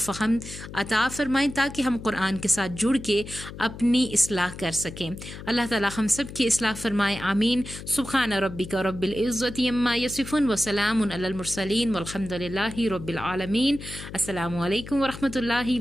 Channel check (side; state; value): left; noise; hum, 12 dB below the sound